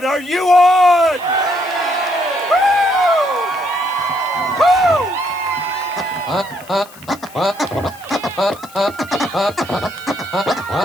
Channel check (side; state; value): left; noise; hiss, 22 dB below the sound